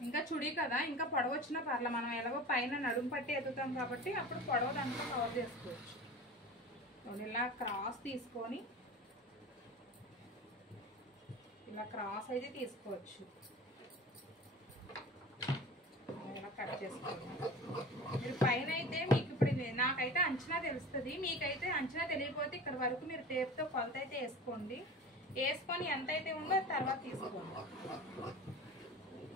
ఇంకా చుడీ కదా, ఇంకా పొడవు వచ్చినా పర్లే. మనం ఎలాగో పైన నడుము పట్టి ఎత్తుతాం కాబట్టి అప్పుడు పొడవు దాంట్లో కవర్ చేసుకోవచ్చు. ఇలా క్రాస్ తీసుకొని ఇలా క్రాస్ అయితే తీసుకోవచ్చు. ఇలా కట్ చేసుకోవాలి. మీరు పైన అయితే మీకు ఇప్పుడు నాకైతే అంచనా తెలుస్తుంది. మీకైతే అంచనా తెలియకపోతే ఇక్కడ వరకు మీరు టేప్తో కొలత అయితే వేసుకోండి. వేసుకొని ఎంత అయితే ఉందో తర్వాత తీసుకోండి.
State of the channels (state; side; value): normal; both; correlation 0.36